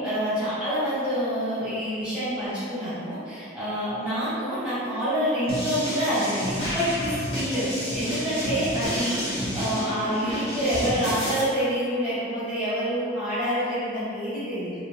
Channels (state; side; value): normal; both; correlation 0.25